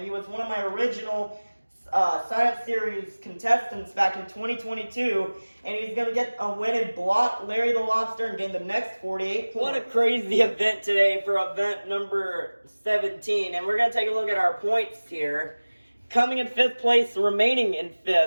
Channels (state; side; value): inverted; both; correlation -1.00